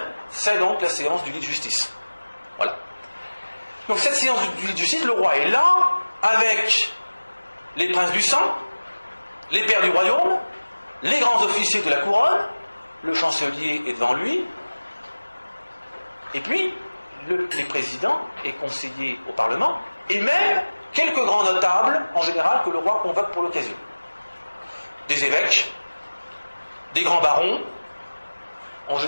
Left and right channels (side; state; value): both; inverted; correlation -1.00